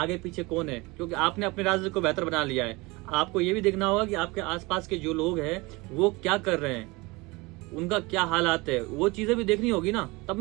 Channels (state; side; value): quieter; left; 24.1 dB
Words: पीछे कौन है, क्योंकि आपने अपने राज्य को बेहतर बना लिया है। आपको ये भी देखना होगा कि आपके आसपास के जो लोग हैं वो क्या कर रहे हैं, उनका क्या हालात है, वो चीजें भी देखनी होगी ना, तब